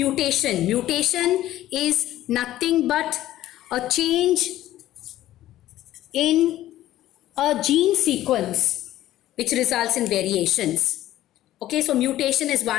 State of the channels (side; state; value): right; quieter; 14.0 dB